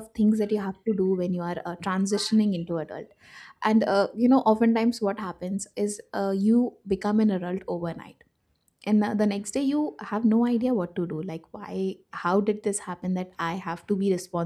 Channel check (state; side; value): identical; both; correlation 1.00